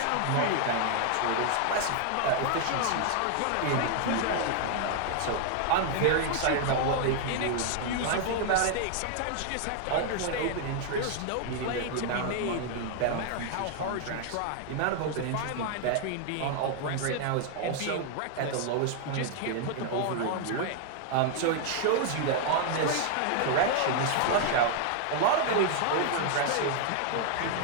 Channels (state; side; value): different; both; correlation 0.00